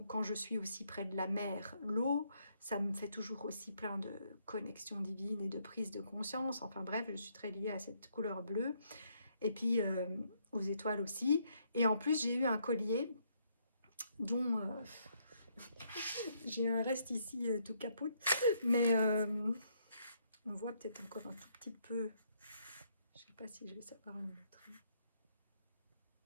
quand je suis aussi près de la mer, l'eau, ça me fait toujours aussi plein de connexions divines et de prise de conscience. Enfin bref, je suis très liée à cette couleur bleue, et puis aux étoiles aussi. Et en plus, j'ai eu un collier dont j'ai un reste ici tout capote, mais on voit peut-être encore un tout petit peu. Je sais pas si je vais savoir le montrer.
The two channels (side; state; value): both; inverted; correlation -0.73